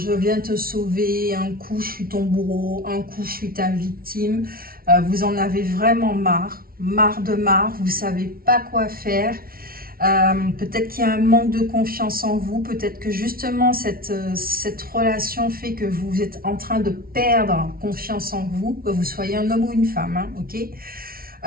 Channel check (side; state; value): left; late; 0.43 ms